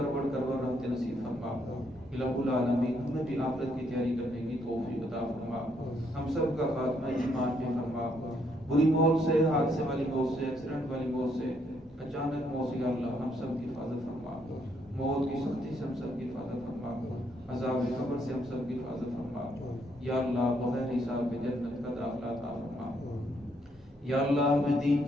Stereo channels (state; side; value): normal; both; correlation 0.72